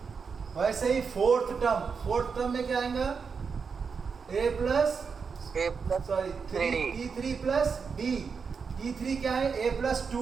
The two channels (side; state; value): left; quieter; 5.7 dB